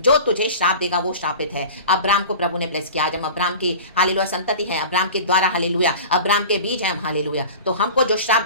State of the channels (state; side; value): inverted; both; correlation -0.36